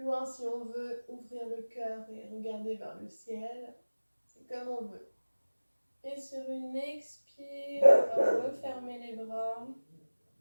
loin si on veut, ouvrir le cœur et regarder vers le ciel. C'est comme on veut. Et sur une expire, on va refermer les bras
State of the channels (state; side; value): inverted; both; correlation -1.00